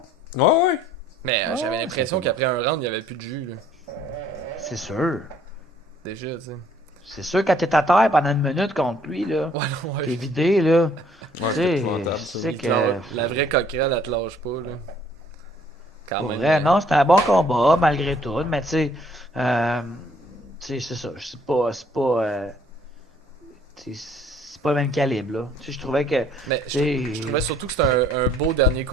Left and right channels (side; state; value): both; normal; correlation 0.61